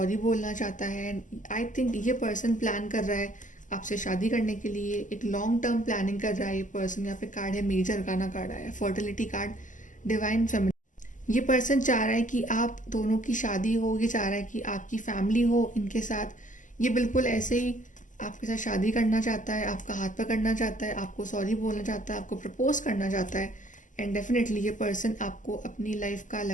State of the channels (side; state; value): right; late; 0.37 ms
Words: बोलना चाहता है। आई थिंक ये पर्सन प्लान कर रहा है आपसे शादी करने के लिए, एक लॉन्ग टर्म प्लानिंग कर रहा है ये पर्सन। यहाँ पे कार्ड है मेजर अरकाना कार्ड आया है, फर्टिलिटी कार्ड, डिवाइन फेमिनिन। ये पर्सन चाह रहा है कि आप दोनों की शादी हो, ये चाह रहा है कि आपकी फैमिली हो इनके साथ। ये बिल्कुल ऐसे ही आपके साथ शादी करना चाहता है, आपका हाथ पकड़ना चाहता है, आपको सॉरी बोलना चाहता है, आपको प्रपोज करना चाहता है। एंड डेफिनेटली ये पर्सन आपको अपनी लाइफ का